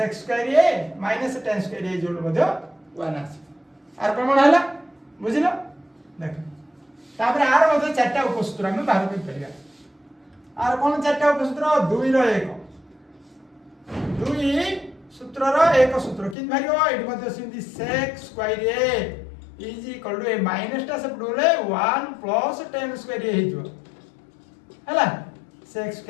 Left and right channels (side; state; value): right; drops out; at 16.4 s